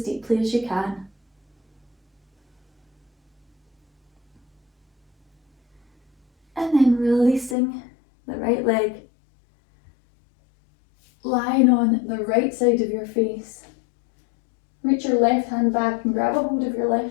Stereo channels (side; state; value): right; drops out; at 7.6 s